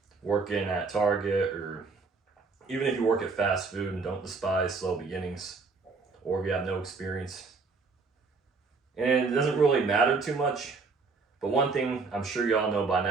working at Target, or even if you work at fast food. And don't despise slow beginnings, or if you have no experience. And it doesn't really matter too much, but one thing I'm sure y'all know by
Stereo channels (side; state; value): left; quieter; 4.3 dB